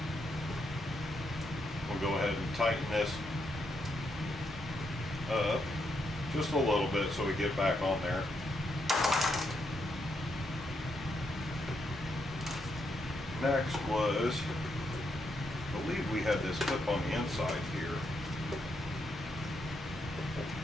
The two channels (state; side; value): normal; both; correlation 0.79